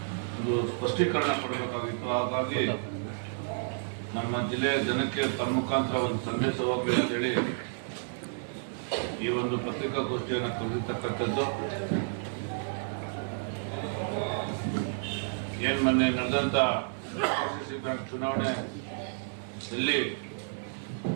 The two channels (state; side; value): silent; left; digital silence